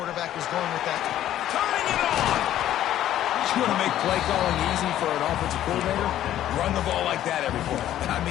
was going with that. Turning it on! You want to make play calling easy for an offensive coordinator? Run the ball like that every play. I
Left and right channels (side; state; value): right; quieter; 12.2 dB